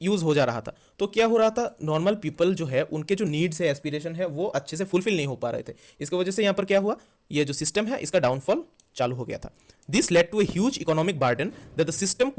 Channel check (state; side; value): identical; both; correlation 1.00